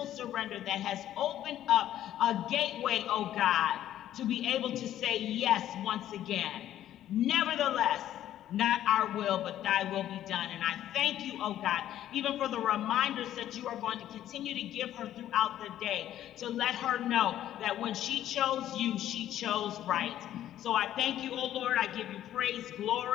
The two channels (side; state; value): right; quieter; 12.1 dB